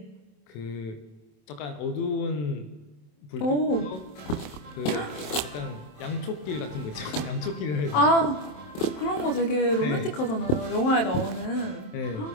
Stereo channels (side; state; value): right; late; 27 ms